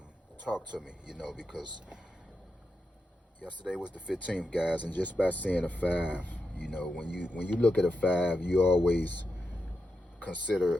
talk to me, because yesterday was the 15th, guys, and just by seeing a five, when you look at a five, you always consider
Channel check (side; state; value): both; normal; correlation 0.87